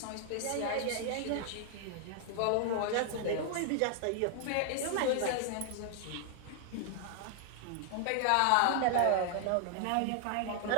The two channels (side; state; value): both; different; correlation 0.00